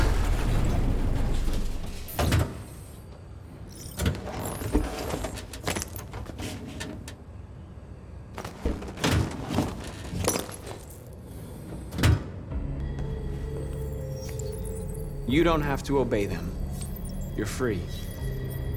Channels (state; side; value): identical; both; correlation 1.00